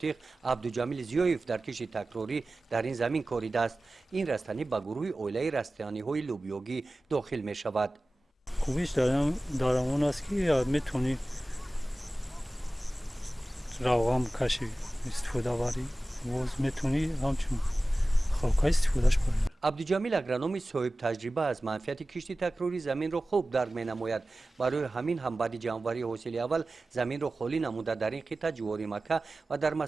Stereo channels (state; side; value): normal; both; correlation 0.96